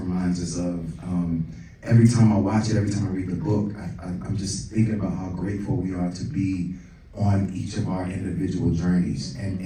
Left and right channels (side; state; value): both; identical; correlation 1.00